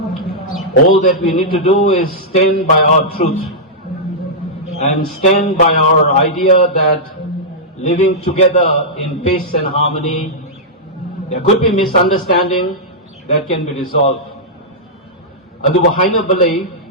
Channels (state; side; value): normal; both; correlation -0.10